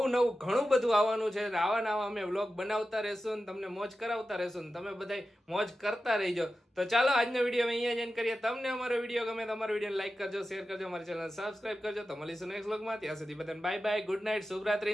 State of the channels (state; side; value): normal; both; correlation 0.93